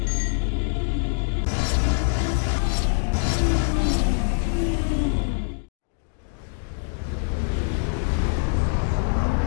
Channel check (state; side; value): silent; right; digital silence